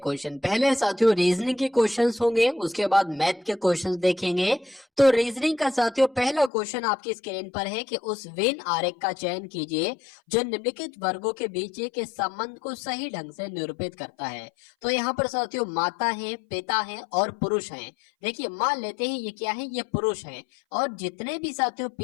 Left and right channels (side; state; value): right; drops out; at 6.5 s